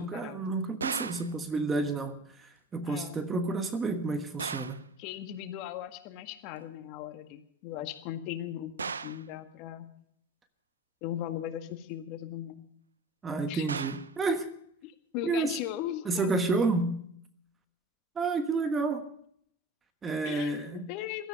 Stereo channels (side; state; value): both; normal; correlation 0.42